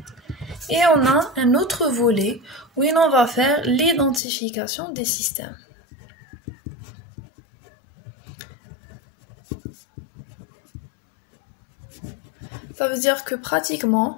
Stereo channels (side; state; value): right; drops out; at 4.2 s